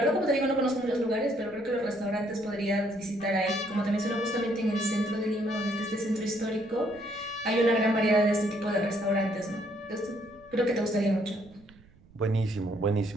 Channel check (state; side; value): noise; right; rumble, 26 dB below the sound